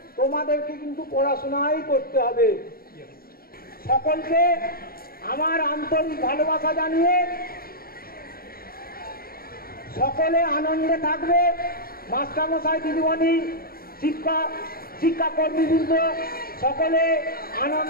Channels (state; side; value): late; right; 0.43 ms